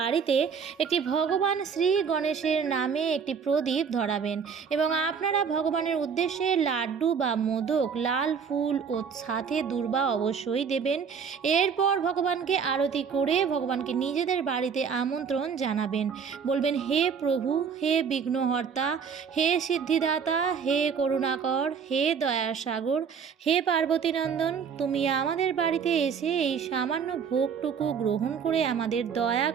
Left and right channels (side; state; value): left; quieter; 6.5 dB